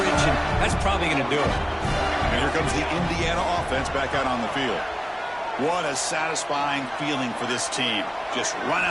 and that's probably going to do it. And here comes the Indiana offense back out on the field. What a satisfying feeling for this team. Just run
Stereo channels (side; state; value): both; identical; correlation 1.00